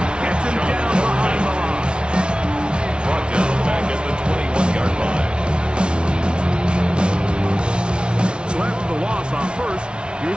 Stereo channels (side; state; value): left; late; 0.056 ms